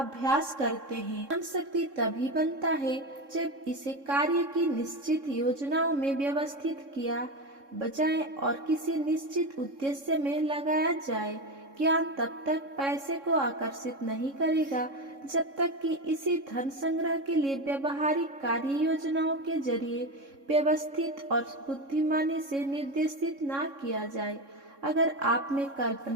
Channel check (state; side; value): late; left; 3.6 ms